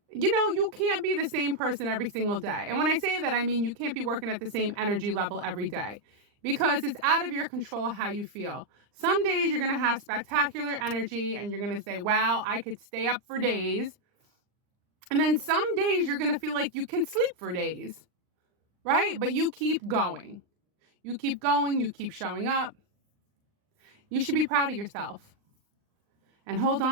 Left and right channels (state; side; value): late; left; 39 ms